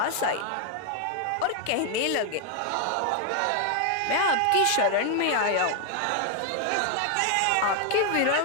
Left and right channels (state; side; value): different; both; correlation 0.00